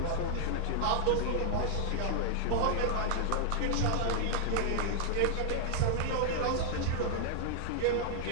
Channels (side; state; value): both; different; correlation -0.01